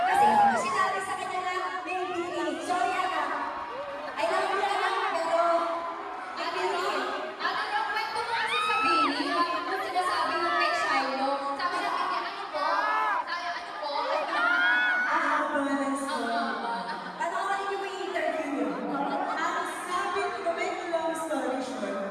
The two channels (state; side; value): identical; both; correlation 1.00